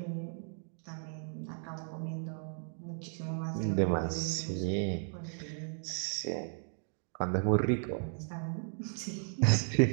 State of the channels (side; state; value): left; silent; 54 dB below the other